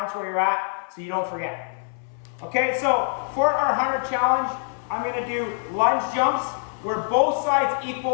where you're at so you don't forget. Okay, so for our 100 challenge, I'm gonna do lunge jumps where both sides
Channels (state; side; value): silent; right; 59 dB below the other